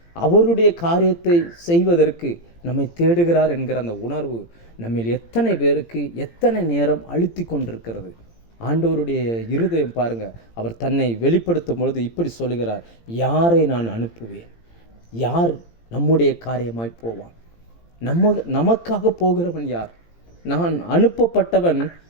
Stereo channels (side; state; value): right; late; 18 ms